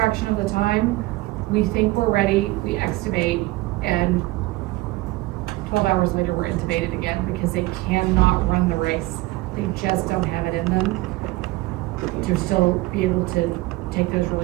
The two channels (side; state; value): left; quieter; 19.9 dB